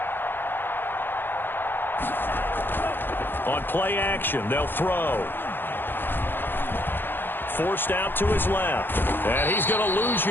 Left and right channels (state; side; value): late; right; 0.099 ms